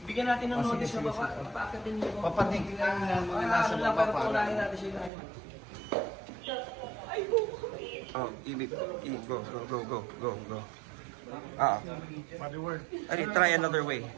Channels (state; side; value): drops out; left; at 5.1 s